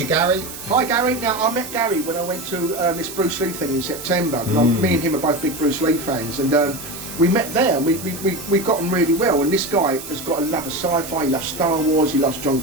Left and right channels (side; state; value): right; noise; hiss, 11 dB below the sound